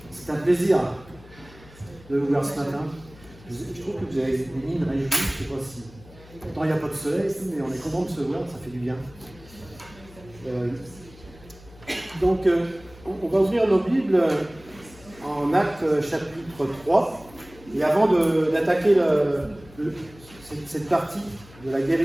c'est un plaisir de vous voir ce matin. Je trouve que vous avez des mines réjouies, je ne sais pas si... Pourtant, il n'y a pas de soleil, mais on est content de se voir, ça fait du bien. Donc, on va ouvrir nos Bibles en Actes chapitre 3. Et avant d'attaquer cette partie de la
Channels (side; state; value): left; noise; hum, 22 dB below the sound